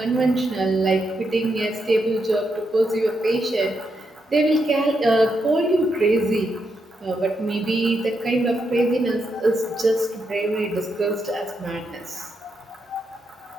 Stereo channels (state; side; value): normal; both; correlation 0.82